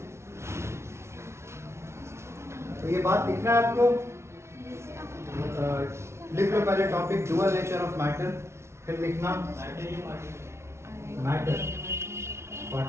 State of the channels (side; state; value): left; late; 0.13 ms